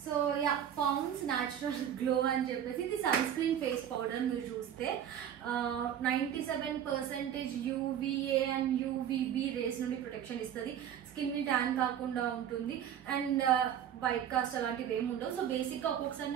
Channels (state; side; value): quieter; left; 9.6 dB